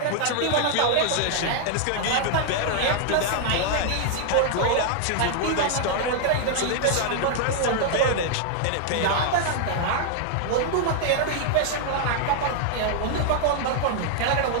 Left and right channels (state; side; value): different; both; correlation 0.00